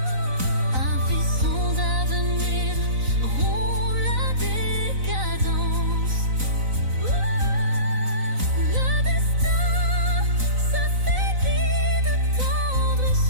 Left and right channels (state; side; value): late; left; 3.9 ms